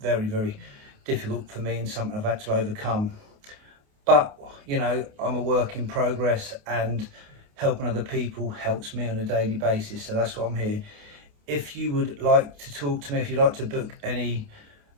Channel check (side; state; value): left; late; 28 ms